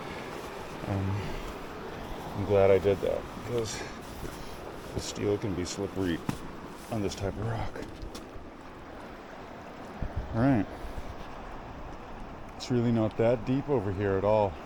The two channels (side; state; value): both; identical; correlation 1.00